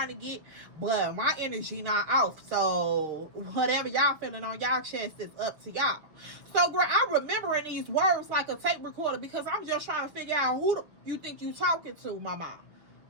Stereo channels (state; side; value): late; left; 6.6 ms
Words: to get, but my energy not off. So whatever y'all feeling on y'all chest is up to y'all. So girl, I'm remembering these words like a tape recorder because I'm just trying to figure out who you think you talking to, mama.